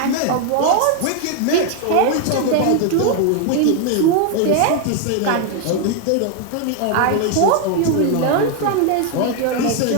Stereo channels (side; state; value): both; different; correlation 0.01